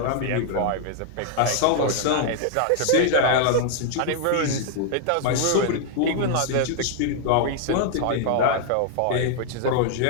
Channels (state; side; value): different; both; correlation 0.00